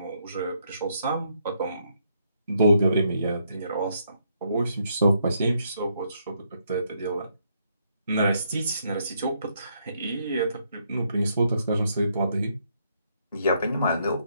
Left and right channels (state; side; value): inverted; both; correlation -0.74